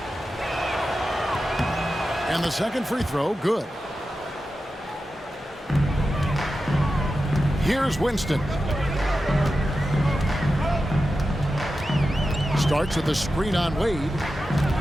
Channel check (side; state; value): both; normal; correlation 0.92